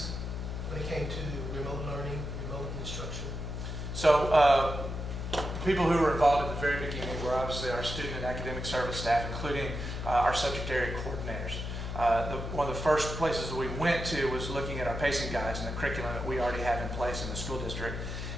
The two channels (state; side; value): noise; left; hum, 5 dB below the sound